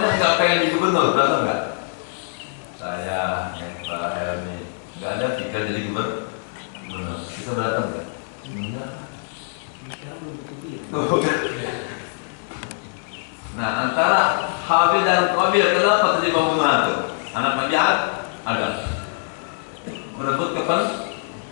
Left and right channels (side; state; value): right; silent; digital silence